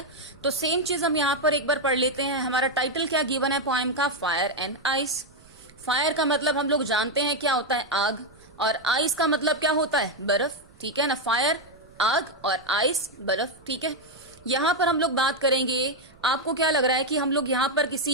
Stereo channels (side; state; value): right; noise; rumble, 26 dB below the sound